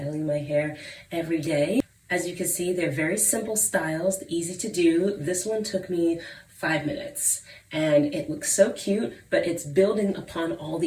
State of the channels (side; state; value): both; identical; correlation 1.00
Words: my hair every day. As you can see, they're very simple styles, easy to do. This one took me 5 minutes and it looks so cute, but it's building upon all